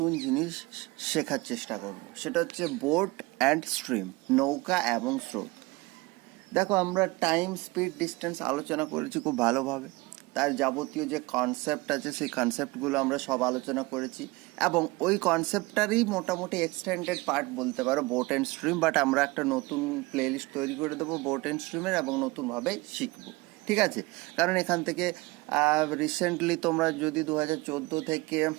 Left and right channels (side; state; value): left; quieter; 23.2 dB